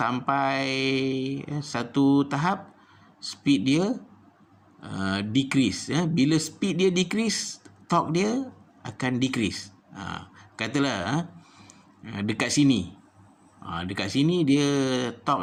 satu tahap speed dia decrease. Bila speed dia decrease, torque dia akan decrease. Katalah dekat sini, dekat sini dia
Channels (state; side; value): identical; both; correlation 1.00